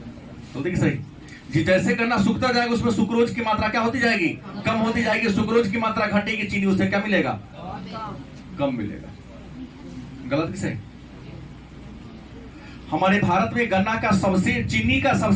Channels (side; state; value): both; identical; correlation 1.00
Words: तो देखिए सही जी, जैसे गन्ना सूखता जाएगा उसमें सुक्रोज की मात्रा क्या होती जाएगी? कम होती जाएगी। सुक्रोज की मात्रा घटेगी, चीनी उससे क्या मिलेगा? कम मिलेगा। गलत कि सही? हमारे भारत में गन्ना का चीनी का